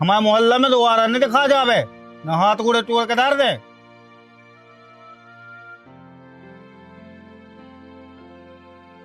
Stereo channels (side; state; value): both; identical; correlation 1.00